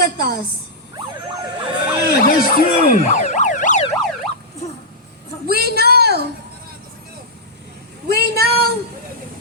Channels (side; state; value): both; normal; correlation -0.10